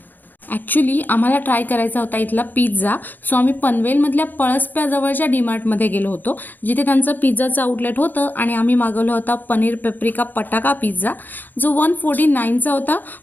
ॲक्च्युली आम्हाला ट्राय करायचा होता इथला पिझ्झा, सो आम्ही पनवेलमधल्या पळसप्याजवळच्या डीमार्टमध्ये गेलो होतो, जिथे त्यांचं पिझ्झाचं आउटलेट होतं आणि आम्ही मागवला होता पनीर पेप्रिका पटाका पिझ्झा, जो 149चा होता.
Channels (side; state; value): right; late; 0.087 ms